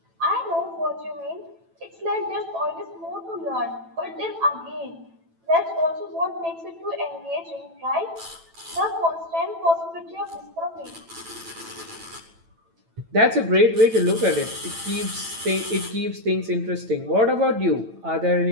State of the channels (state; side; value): late; left; 9.0 ms